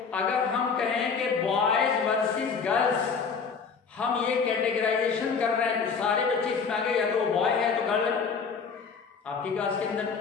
अगर हम कहें कि बॉयज वर्सेस गर्ल्स, हम ये कैटेगराइजेशन कर रहे हैं, तो सारे बच्चे इसमें आ गए, या तो वो बॉय है तो गर्ल है आपकी क्लास के अंदर,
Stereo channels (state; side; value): quieter; right; 5.6 dB